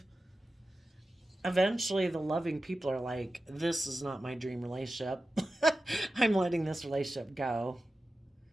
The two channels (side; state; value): both; normal; correlation 0.93